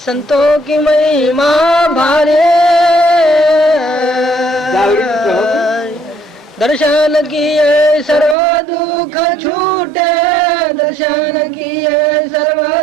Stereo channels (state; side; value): drops out; left; at 8.3 s